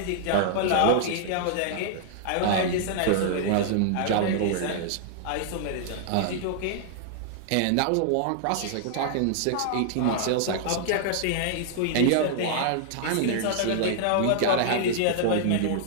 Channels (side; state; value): both; different; correlation -0.01